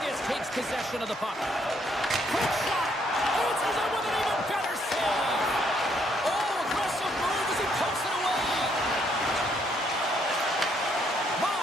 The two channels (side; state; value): both; normal; correlation 0.71